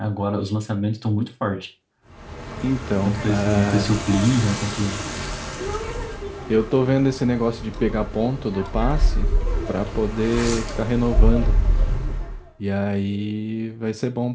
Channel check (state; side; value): identical; both; correlation 1.00